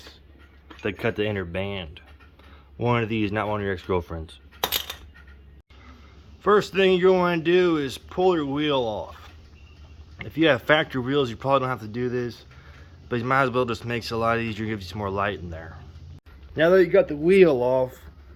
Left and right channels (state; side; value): identical; both; correlation 1.00